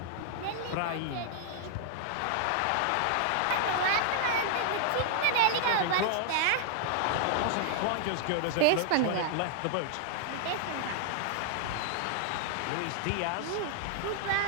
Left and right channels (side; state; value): both; different; correlation -0.01